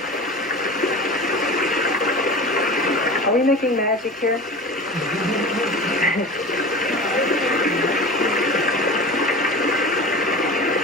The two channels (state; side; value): normal; both; correlation 0.34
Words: Are we making magic here?